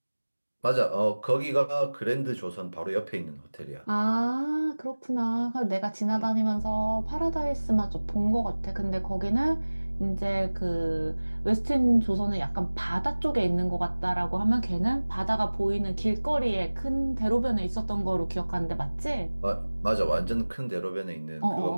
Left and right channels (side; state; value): both; inverted; correlation -1.00